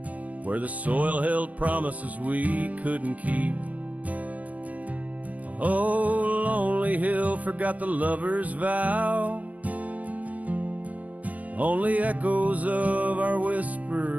where the soil held promises we couldn't keep. Oh, lonely hill forgot the lover's vow, only echoes of our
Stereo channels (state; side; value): late; left; 0.073 ms